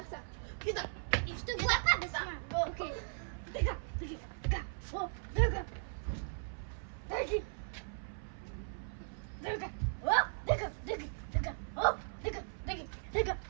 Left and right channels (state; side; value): silent; left; 53 dB below the other